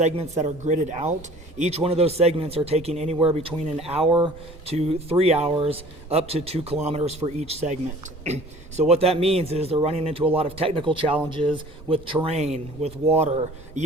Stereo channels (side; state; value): both; normal; correlation 0.48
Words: that are gridded out. Each one of those segments are taking anywhere between an hour to 3 hours, up to 2 kilometers for each segment. So what that means is they're running into a lot of technical challenges with terrain, with water,